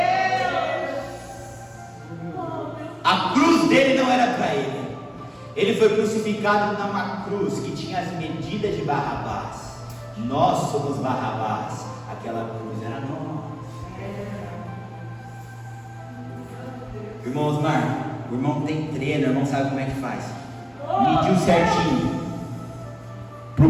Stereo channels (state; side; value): identical; both; correlation 1.00